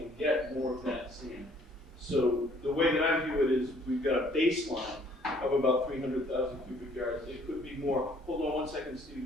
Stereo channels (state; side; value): normal; both; correlation 0.60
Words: get more of that sand. So the way that I view it is we've got a baseline of about 300,000 cubic yards. It could be more. Hold on one second,